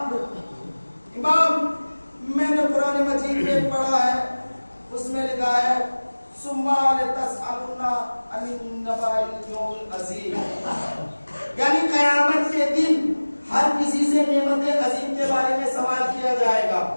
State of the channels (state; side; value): inverted; both; correlation -1.00